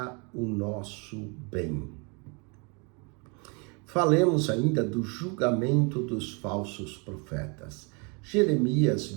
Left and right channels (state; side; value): quieter; left; 32.6 dB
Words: o nosso bem. Falemos ainda do julgamento dos falsos profetas. Jeremias